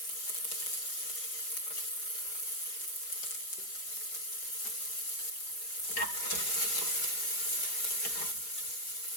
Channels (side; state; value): right; late; 5.2 ms